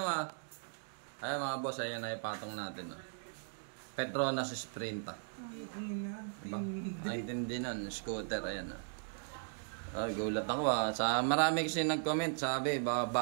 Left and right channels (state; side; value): silent; left; digital silence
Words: ah. Ayan mga boss, ayan na ipatong natin. Petronas Sprinta. Diba? Ang intindi nun, scooter, ayan ah. Ay, gulat ako ah. Marami kasi nag-comment, sabi,